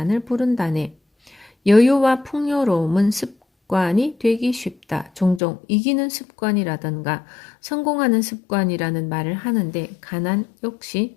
부른다네. 여유와 풍요로움은 습관이 되기 쉽다. 종종 이기는 습관이라던가 성공하는 습관이라는 말을 하는데 가난 역시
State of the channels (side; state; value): right; drops out; at 5.4 s